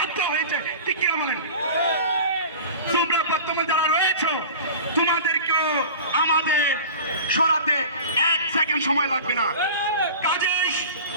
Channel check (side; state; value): both; inverted; correlation -0.37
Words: হয়েছে, ঠিক কিনা বলেন? তোমরা বর্তমানে যারা রয়েছো, তোমাদেরকেও আমাদের সরাতে 1 সেকেন্ড সময় লাগবে না। কাজেই